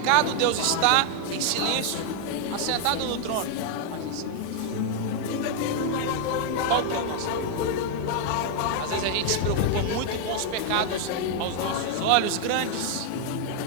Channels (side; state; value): both; different; correlation 0.00